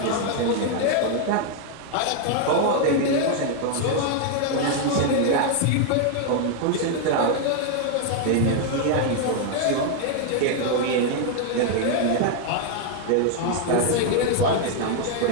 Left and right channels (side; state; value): both; different; correlation 0.00